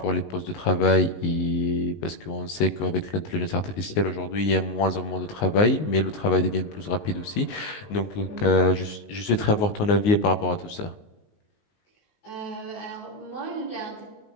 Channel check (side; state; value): right; late; 19 ms